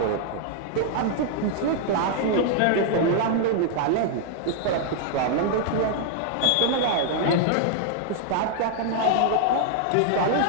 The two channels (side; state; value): both; different; correlation 0.00